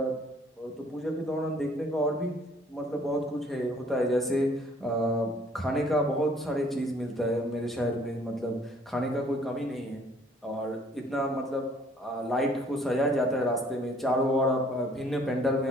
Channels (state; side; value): normal; both; correlation 0.58